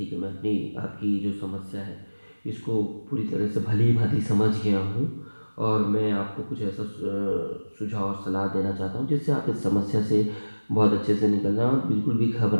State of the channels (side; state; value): both; inverted; correlation -1.00